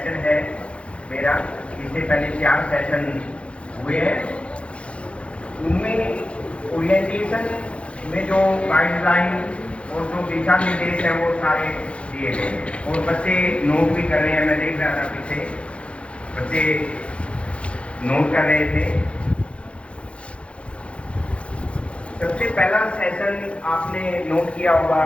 है मेरा। इससे पहले 4 सेशन हुए हैं। उनमें ओरिएंटेशन में जो गाइडलाइन और जो दिशा निर्देश है वो सारे दिए गए और बच्चे नोट भी कर रहे हैं। मैं देख रहा था पीछे बच्चे नोट कर रहे थे। सबसे पहला सेशन आपने नोट किया होगा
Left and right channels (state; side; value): late; right; 0.060 ms